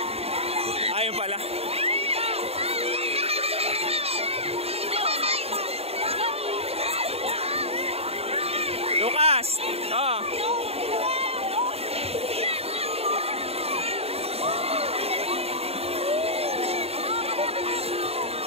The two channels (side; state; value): left; late; 0.29 ms